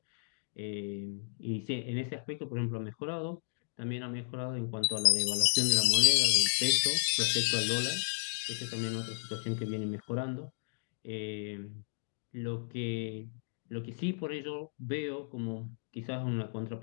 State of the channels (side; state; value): right; silent; digital silence